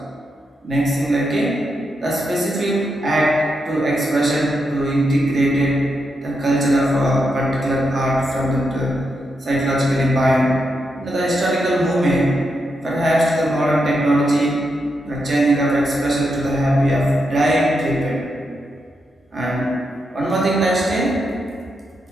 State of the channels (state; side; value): normal; both; correlation 0.84